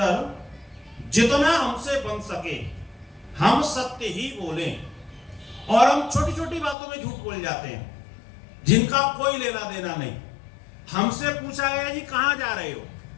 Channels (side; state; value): right; drops out; at 6.8 s